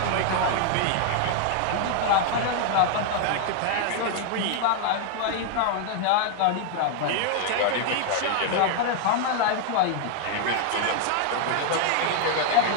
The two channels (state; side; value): different; both; correlation 0.00